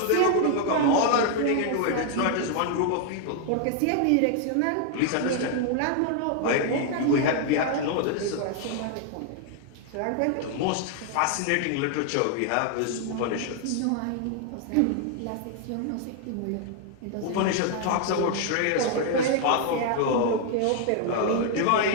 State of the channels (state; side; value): different; both; correlation 0.00